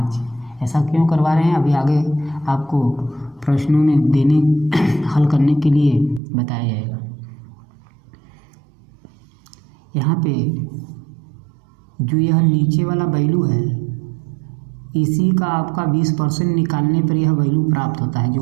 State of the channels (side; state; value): left; drops out; at 6.2 s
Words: ऐसा क्यों करवा रहे हैं अभी आगे आपको प्रश्नों में देने हल करने के लिए बताया जाएगा। यहाँ पे जो यह नीचे वाला वैल्यू है, इसी का आपका 20% निकालने पर यह वैल्यू प्राप्त होता है। जो